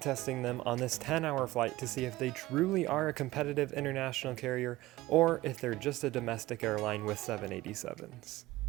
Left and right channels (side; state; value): left; quieter; 17.9 dB